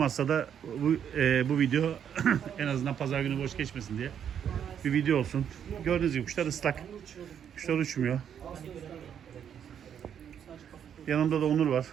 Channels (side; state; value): left; quieter; 8.7 dB